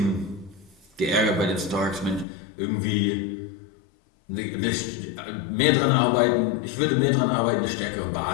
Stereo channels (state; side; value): drops out; right; at 2.2 s